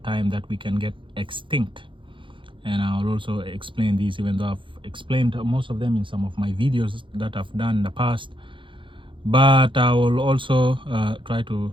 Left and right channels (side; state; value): left; late; 0.24 ms